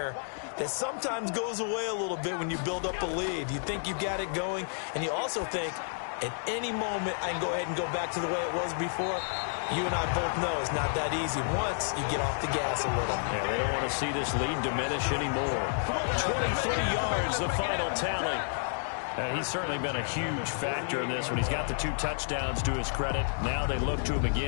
that sometimes goes away a little bit when you build up a lead. You think you've got it going, and you also think, at any moment, I can go ahead and go back to the way it was before. You and I both know it's not that easy once you get off the gas a little. Yeah, they don't want to see this lead diminish anymore. 23 yards, the final tally. He's certainly been a huge factor in this when he's got the 2 touchdowns to his credit. Now they look to him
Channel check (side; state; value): right; silent; digital silence